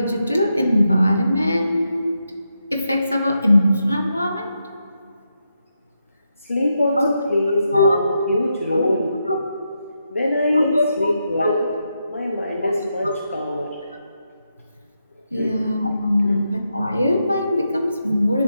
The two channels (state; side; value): inverted; both; correlation -0.84